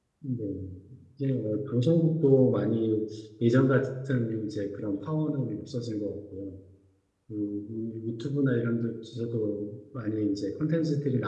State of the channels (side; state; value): both; identical; correlation 1.00